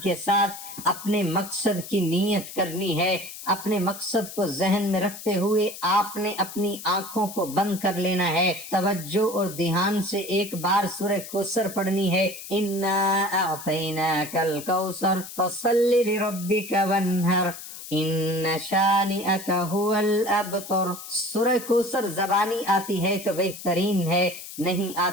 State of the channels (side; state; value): left; noise; hiss, 12 dB below the sound